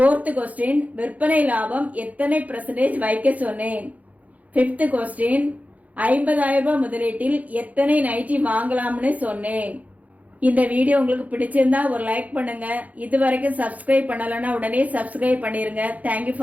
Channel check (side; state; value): left; late; 0.074 ms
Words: கொஸ்டின், விற்பனை லாபம் எத்தனை % வைக்க சொன்னேன்? ஃபிஃப்த் கொஸ்டின், 50,000 ரூபாய் முதலீட்டில் எத்தனை நைட்டி வாங்கலாம்னு சொன்னேன். இந்த வீடியோ உங்களுக்கு பிடிச்சிருந்தா ஒரு லைக் பண்ணுங்க. இது வரைக்கும் சப்ஸ்கிரைப் பண்ணலன்னா உடனே சப்ஸ்கிரைப் பண்ணிருங்க. தேங்க்யூ